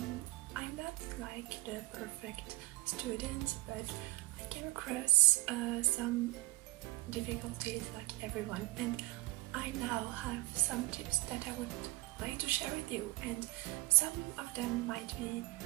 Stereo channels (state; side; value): quieter; left; 20.1 dB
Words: not like the perfect student, but I came across some difficulties like everyone, and I now have some tips that I would like to share with you, and some of them might be